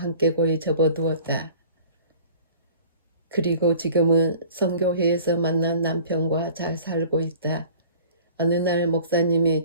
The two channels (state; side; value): inverted; both; correlation -0.46